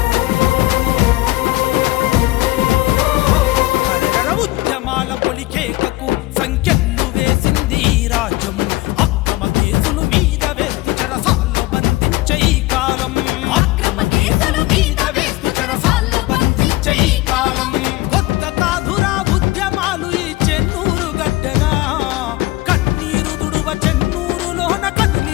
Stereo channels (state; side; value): quieter; right; 19.6 dB